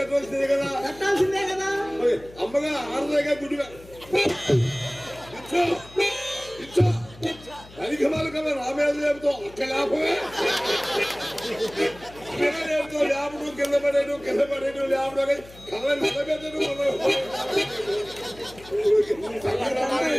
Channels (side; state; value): left; noise; hum, 20 dB below the sound